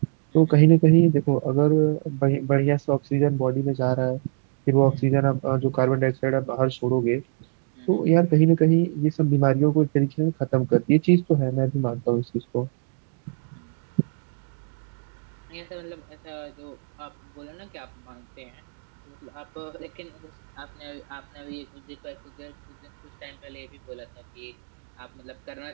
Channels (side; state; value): left; silent; digital silence